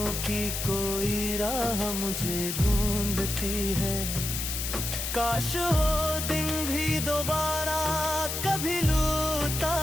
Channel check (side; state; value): left; noise; hiss, 3 dB below the sound